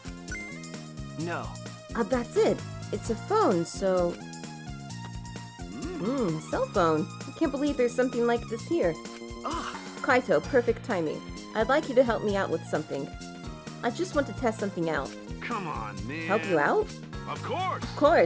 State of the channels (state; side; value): identical; both; correlation 1.00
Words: No. That's it. It's a phone, so... a cell phone. I can't believe there's something like this here. Ah, Kaito, perfect timing. I'd like you to help me out with something. I just want to test something out. Come on, man. Help you out? Of course! Of